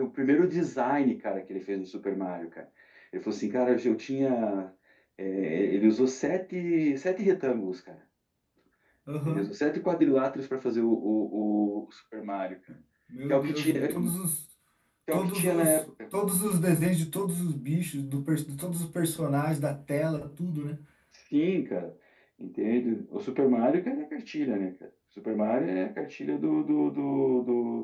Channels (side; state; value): both; identical; correlation 1.00